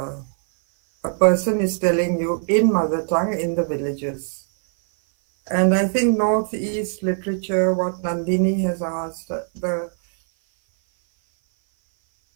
person is telling you in mother tongue in the villages. And I think Northeast literature, what Nandini has asked,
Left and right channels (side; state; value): left; silent; 58 dB below the other